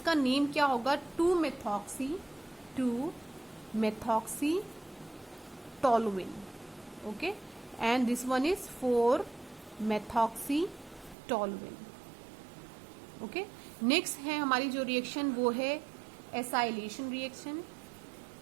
नेम क्या होगा, 2-methoxy toluene। Okay, and this one is 4-methoxy toluene। Okay, next है हमारी जो रिएक्शन वो है acylation reaction.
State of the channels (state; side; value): drops out; left; at 11.2 s